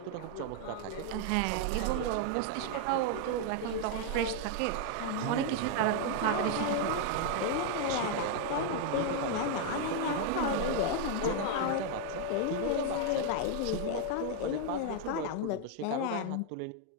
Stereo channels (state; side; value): different; both; correlation 0.00